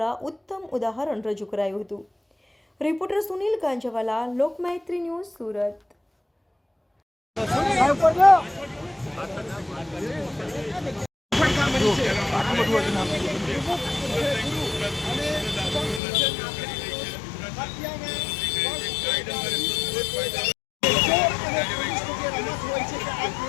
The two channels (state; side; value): drops out; right; at 16.0 s